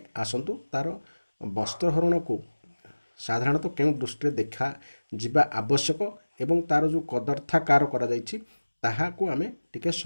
ଆସନ୍ତୁ ତାର ବସ୍ତ୍ରହରଣକୁ ସାଧାରଣତଃ କେଉଁ ଦୃଷ୍ଟିରେ ଦେଖାଯିବା ଆବଶ୍ୟକ ଏବଂ ତାର ଯେଉଁ କଦର୍ଥାକାର କରାଯାଇଛି ତାହାକୁ ଆମେ ଟିକେ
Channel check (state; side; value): inverted; both; correlation -1.00